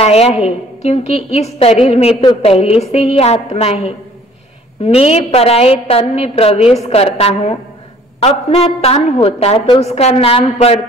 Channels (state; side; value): normal; both; correlation 0.55